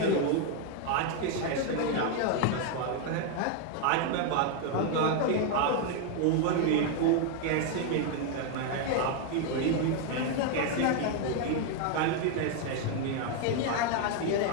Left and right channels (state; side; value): different; both; correlation 0.01